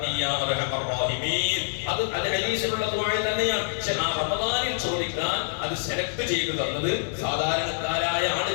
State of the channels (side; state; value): right; silent; 57 dB below the other